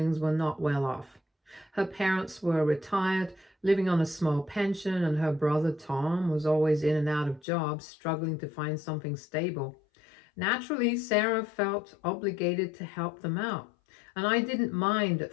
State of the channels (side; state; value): right; drops out; at 7.4 s